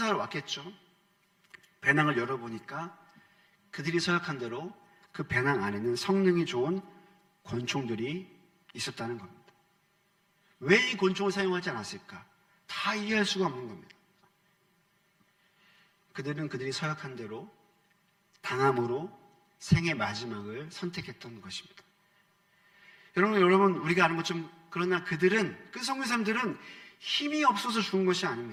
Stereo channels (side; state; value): both; identical; correlation 1.00